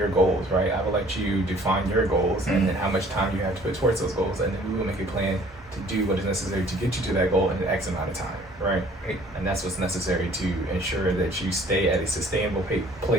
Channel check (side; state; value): both; normal; correlation 0.55